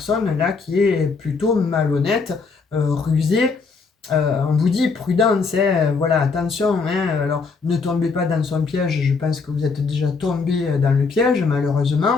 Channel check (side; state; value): right; quieter; 4.7 dB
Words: là qui est plutôt malhonnête, rusée. On vous dit prudence, hein, voilà, attention, hein, alors ne tombez pas dans son piège, je pense que vous êtes déjà tombé dans le piège